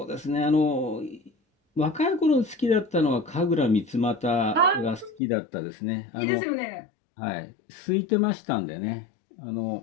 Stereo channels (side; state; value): right; drops out; at 5.2 s